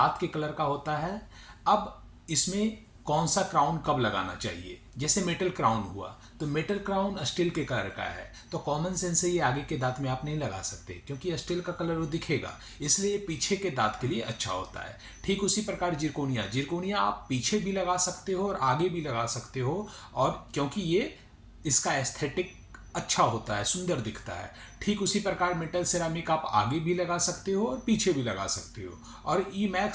के कलर का होता है। अब इसमें कौन सा क्राउन कब लगाना चाहिए? जैसे मेटल क्राउन हुआ तो मेटल क्राउन स्टील के कलर का है, तो कॉमन सेंस से ये आगे के दांत में आप नहीं लगा सकते क्योंकि स्टील का कलर वो दिखेगा, इसलिए पीछे के दांत के लिए अच्छा होता है। ठीक उसी प्रकार जिरकोनिया, जिरकोनिया आप पीछे भी लगा सकते हो और आगे भी लगा सकते हो, और क्योंकि ये इसका एस्थेटिक अच्छा होता है, सुंदर दिखता है। ठीक उसी प्रकार मेटल सिरामिक आप आगे भी लगा सकते हो और पीछे भी लगा सकते हो। और ई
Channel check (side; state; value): both; identical; correlation 1.00